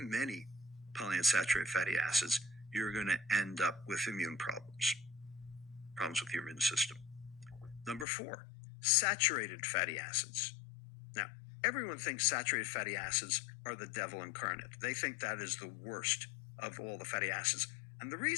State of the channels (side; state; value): right; drops out; at 8.1 s